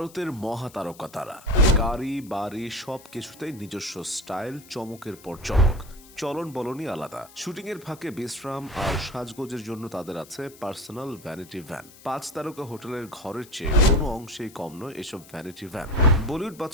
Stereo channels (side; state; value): left; noise; hiss, 21 dB below the sound